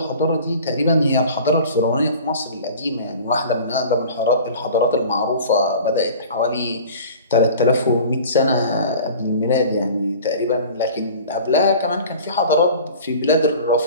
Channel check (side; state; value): both; inverted; correlation -0.42